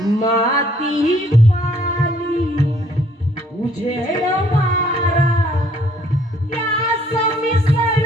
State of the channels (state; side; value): normal; both; correlation 0.62